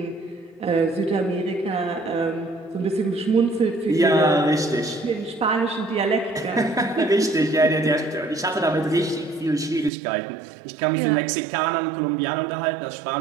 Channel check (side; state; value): left; drops out; at 9.9 s